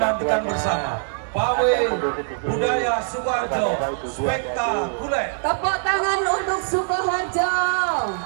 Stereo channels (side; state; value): left; silent; digital silence